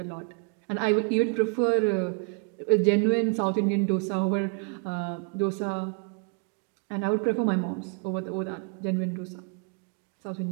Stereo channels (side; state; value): left; quieter; 36.0 dB